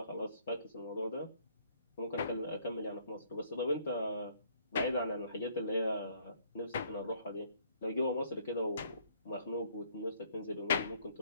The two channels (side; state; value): both; inverted; correlation -0.63